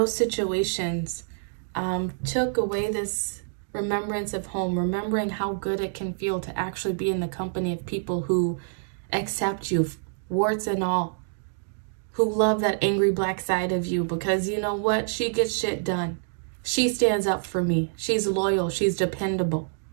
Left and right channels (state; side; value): silent; left; digital silence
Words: situations took away this remembrance of home, remembering how good it can feel to actually be in the company of people who accept you, warts and all, who love that angry black side of you because you know what? She gets shit done. She stands up for me. She's loyal. She's dependable.